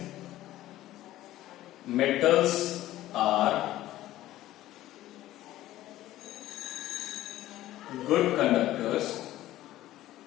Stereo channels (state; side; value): quieter; right; 14.8 dB